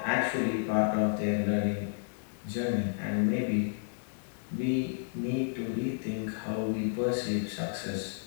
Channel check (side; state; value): right; silent; digital silence